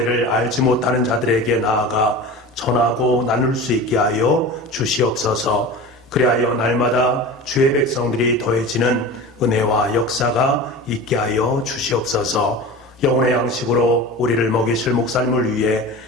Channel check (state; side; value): normal; both; correlation 0.33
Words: 알지 못하는 자들에게 나아가 전하고 나눌 수 있게 하여 주시옵소서. 그리하여 날마다 주의 백성들이 더해지는 은혜와 역사가 있게 하여 주시옵소서. 영혼의 양식으로 우리를 먹이실 목사님을 위해